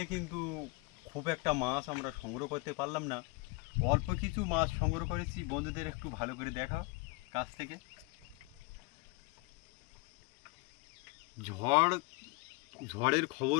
কিন্তু খুব একটা মাছ আমরা সংগ্রহ করতে পারলাম না। অল্প কিছু মাছ সংগ্রহ করেছি, বন্ধুদের একটু ভালো করে দেখাও কাছ থেকে। ঝড়ের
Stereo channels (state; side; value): quieter; right; 26.8 dB